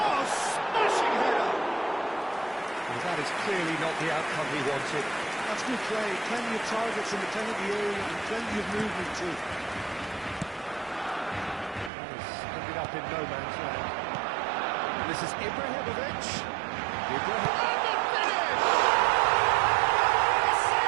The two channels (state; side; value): drops out; left; at 11.9 s